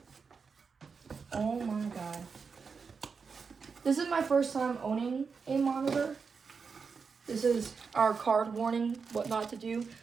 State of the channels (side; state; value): left; quieter; 5.4 dB